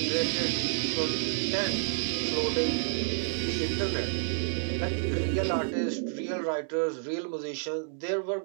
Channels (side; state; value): left; silent; digital silence